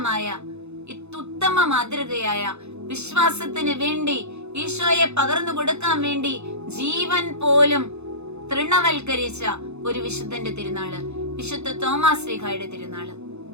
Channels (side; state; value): left; late; 0.81 ms